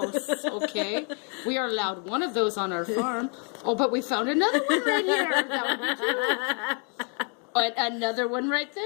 Okay. We are allowed one of those on our farm. Oh, but we found another one right here. That would be cute. And another one right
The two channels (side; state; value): right; quieter; 39.1 dB